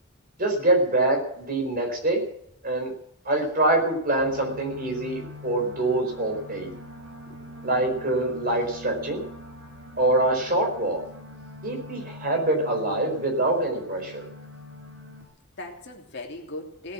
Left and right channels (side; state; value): both; normal; correlation -0.15